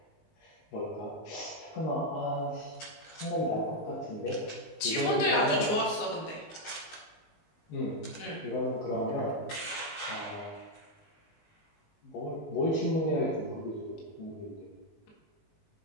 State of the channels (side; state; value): right; late; 19 ms